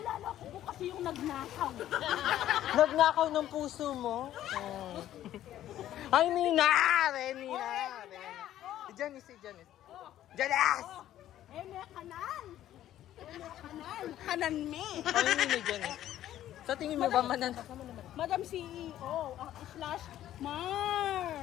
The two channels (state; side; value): quieter; right; 12.5 dB